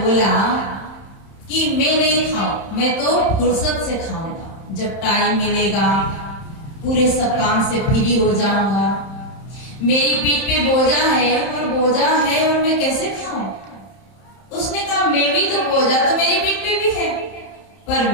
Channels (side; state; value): right; late; 31 ms